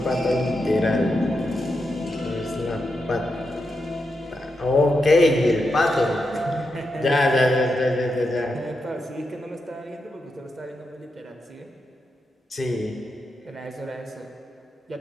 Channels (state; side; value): normal; both; correlation 0.86